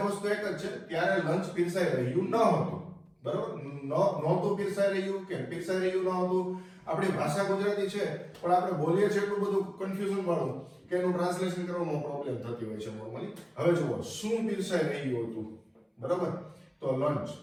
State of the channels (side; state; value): both; identical; correlation 1.00